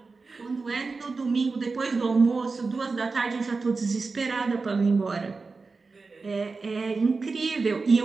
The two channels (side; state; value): left; quieter; 4.2 dB